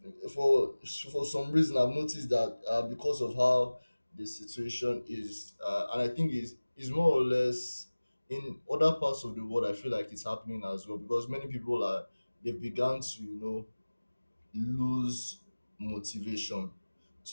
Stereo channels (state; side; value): inverted; both; correlation -1.00